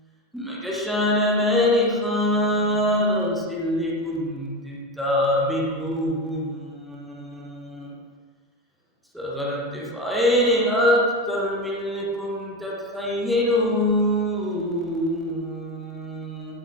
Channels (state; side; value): normal; both; correlation 0.20